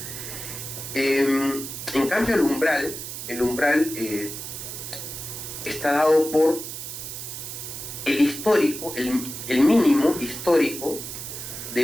En cambio, el umbral está dado por el histórico, el mínimo histórico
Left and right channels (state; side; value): noise; right; hiss, 8 dB below the sound